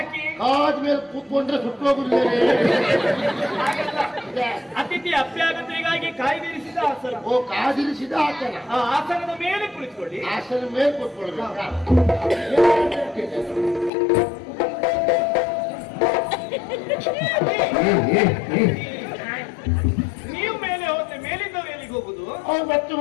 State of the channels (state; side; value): drops out; right; at 13.9 s